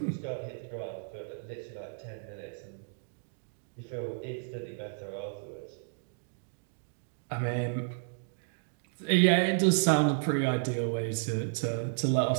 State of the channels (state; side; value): silent; left; digital silence